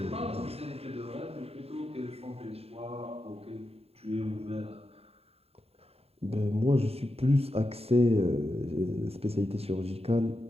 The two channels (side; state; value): left; late; 0.29 ms